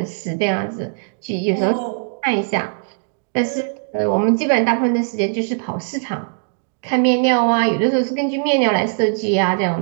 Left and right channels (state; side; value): silent; left; digital silence